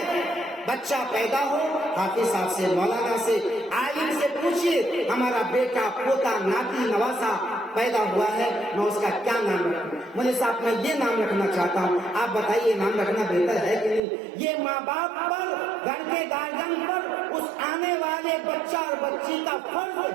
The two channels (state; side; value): drops out; left; at 14.0 s